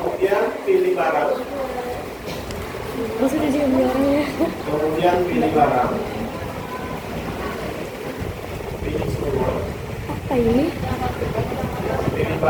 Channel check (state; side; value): identical; both; correlation 1.00